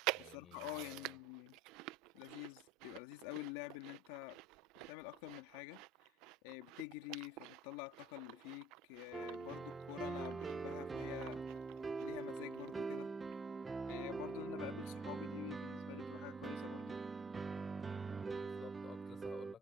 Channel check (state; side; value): normal; both; correlation 0.55